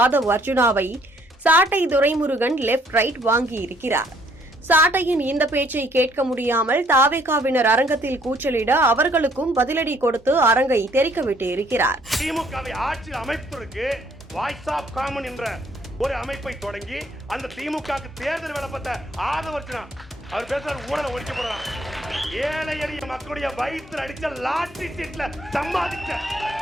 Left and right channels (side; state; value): both; normal; correlation 0.64